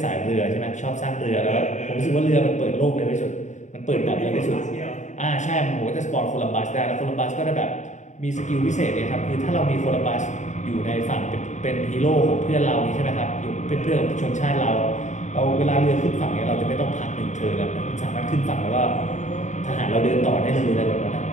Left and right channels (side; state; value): right; late; 0.35 ms